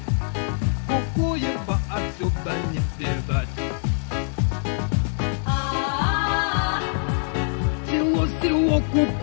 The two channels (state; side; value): silent; right; digital silence